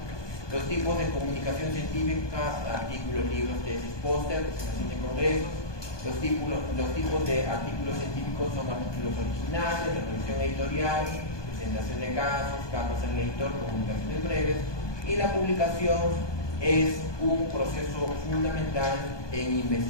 Los tipos de comunicación científica, artículos, libros, tesis, póster, presentación de congresos. Los tipos de artículos científicos son artículos originales, revisión editorial, presentación de casos, cartas al editor, comunicaciones breves. Y la publicación es un proceso fundamental en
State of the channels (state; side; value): late; right; 1.2 ms